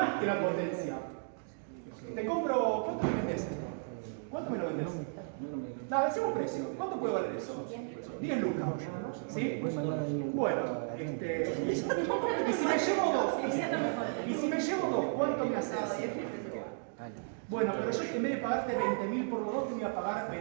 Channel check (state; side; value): silent; left; digital silence